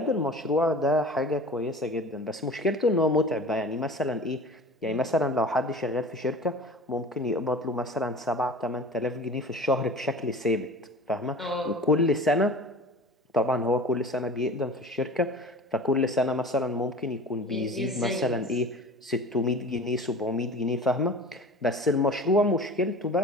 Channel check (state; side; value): normal; both; correlation 0.39